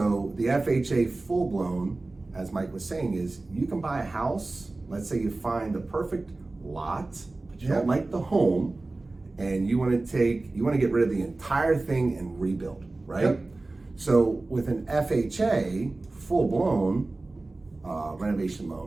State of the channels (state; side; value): quieter; left; 3.2 dB